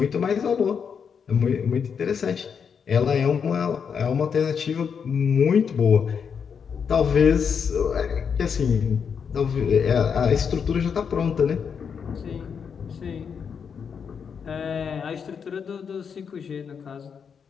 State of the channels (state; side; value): quieter; right; 6.7 dB